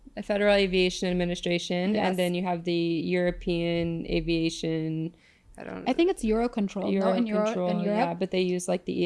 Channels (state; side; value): identical; both; correlation 1.00